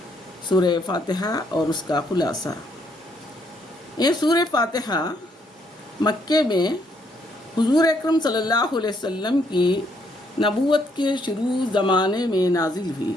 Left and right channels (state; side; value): normal; both; correlation 0.71